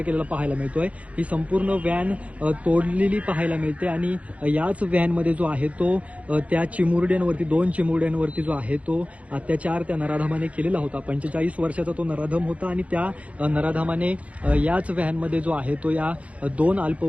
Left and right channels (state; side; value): late; left; 0.065 ms